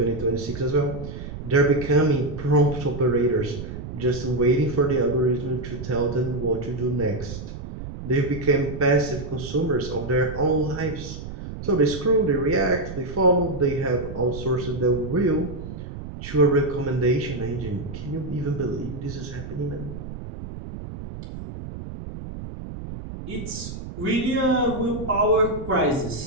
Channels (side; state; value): right; noise; rumble, 10 dB below the sound